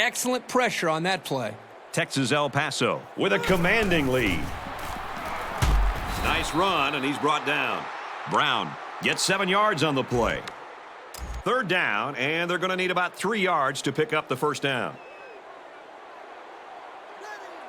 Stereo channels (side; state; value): both; identical; correlation 1.00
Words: pressure on that play. Texas El Paso with a commanding lead. Nice run, and he's brought down. Brown gets 7 yards on the play. Third down, and they're going to need about 3 yards to pick up the first down.